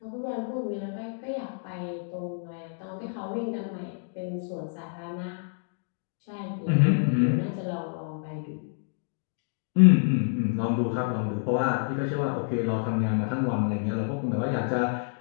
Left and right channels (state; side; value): silent; right; digital silence